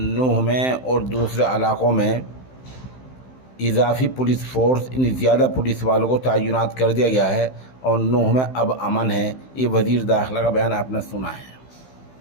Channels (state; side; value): late; right; 15 ms